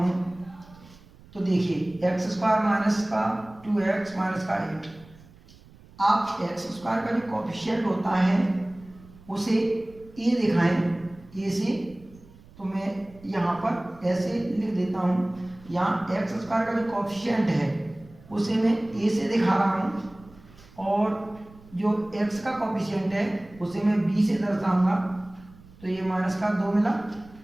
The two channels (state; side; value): noise; right; rumble, 23 dB below the sound